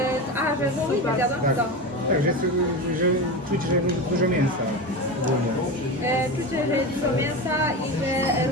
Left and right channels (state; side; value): normal; both; correlation 0.22